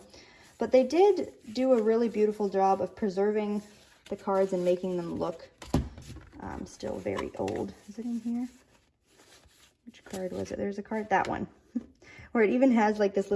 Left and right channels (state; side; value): identical; both; correlation 1.00